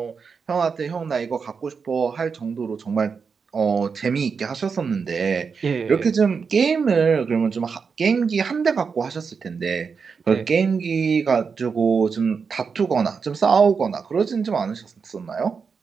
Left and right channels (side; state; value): left; quieter; 5.6 dB